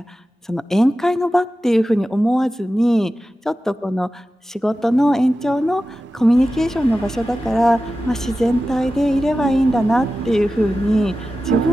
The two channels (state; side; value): normal; both; correlation 0.94